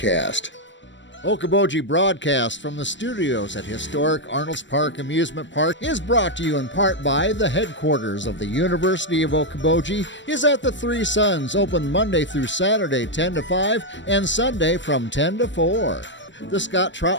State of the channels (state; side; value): late; right; 0.53 ms